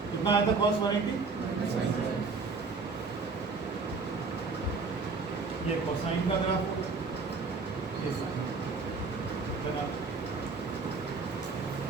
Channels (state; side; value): quieter; left; 4.3 dB